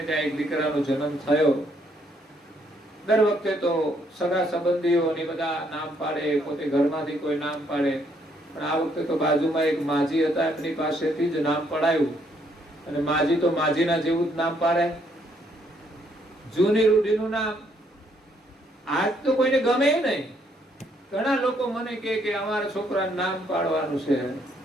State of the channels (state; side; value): normal; both; correlation 0.70